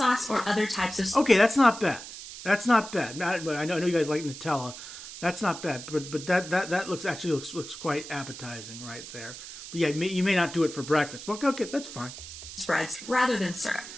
or other types of... Okay, that's not bad. That's not bad. I know you guys like Nutella. That's not bad. But that looks quite appetizing right there. But yeah, you may not do it for breakfast. But okay, that's fine. Spreads rather than syrup.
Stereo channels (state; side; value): noise; right; hiss, 12 dB below the sound